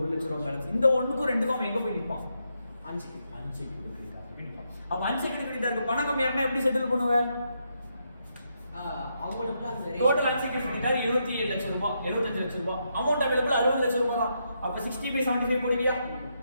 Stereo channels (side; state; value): both; inverted; correlation -0.80